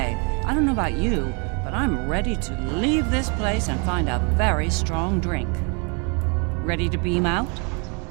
I don't know about you, but I'm ready to leave this place and find a very strong drink. Ready to beam out?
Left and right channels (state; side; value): quieter; left; 34.6 dB